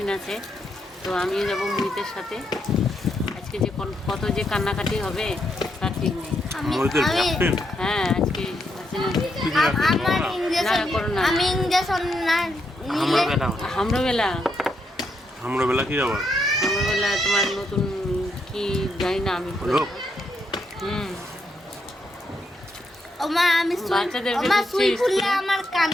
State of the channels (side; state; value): both; normal; correlation 0.79